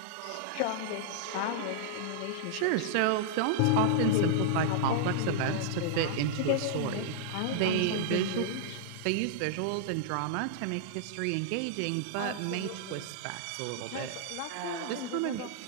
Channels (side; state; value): both; different; correlation -0.01